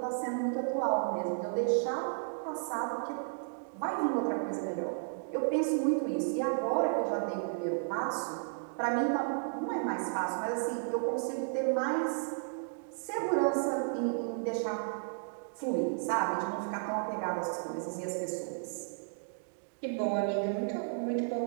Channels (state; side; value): silent; left; digital silence